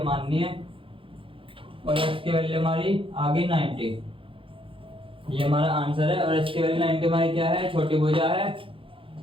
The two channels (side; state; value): left; late; 0.25 ms